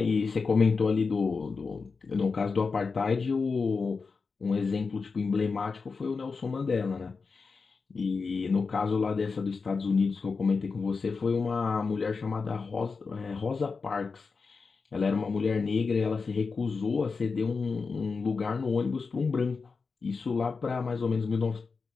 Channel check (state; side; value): quieter; right; 4.7 dB